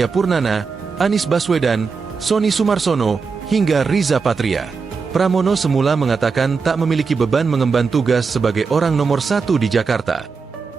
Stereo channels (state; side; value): quieter; left; 5.1 dB